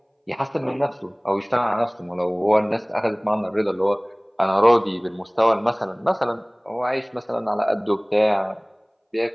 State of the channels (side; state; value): both; identical; correlation 1.00